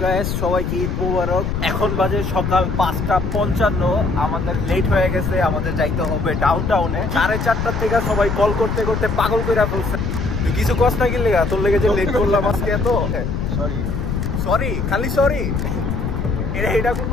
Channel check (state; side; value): noise; left; rumble, 2 dB below the sound